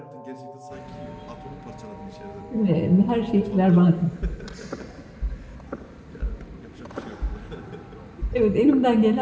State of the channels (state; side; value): identical; both; correlation 1.00